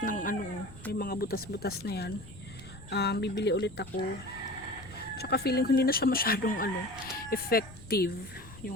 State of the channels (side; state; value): left; noise; rumble, 18 dB below the sound